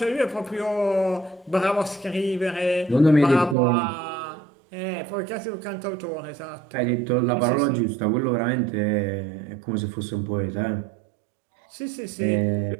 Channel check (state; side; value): drops out; left; at 3.6 s